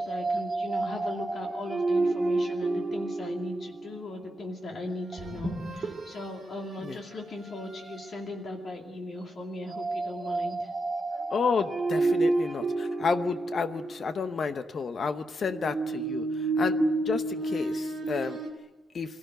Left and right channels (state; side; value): normal; both; correlation 0.83